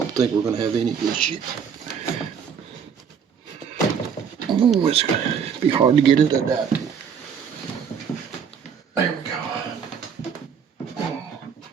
think we're going to have any issue. Oh, it's going to be hard to get it adapted. There we go.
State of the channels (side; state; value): left; quieter; 7.1 dB